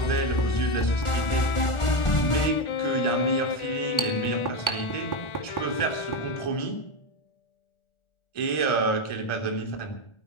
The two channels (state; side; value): late; right; 1.5 ms